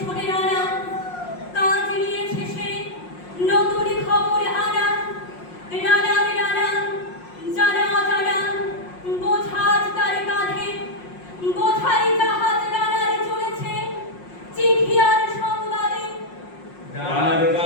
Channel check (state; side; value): late; right; 5.6 ms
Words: ছুটে নানা, কাজ নিয়েছে সে নতুন খবর আনা। রানার রানা জানা অজানা বোঝাজ তার কাঁধে, বোঝাই জাহাজ রানার চলেছে চিঠি আর সংবাদে। রানার